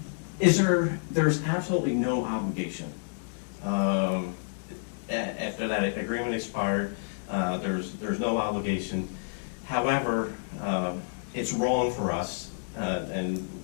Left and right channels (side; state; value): right; silent; digital silence